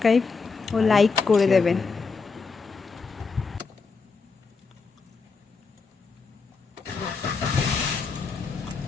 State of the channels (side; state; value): right; quieter; 4.7 dB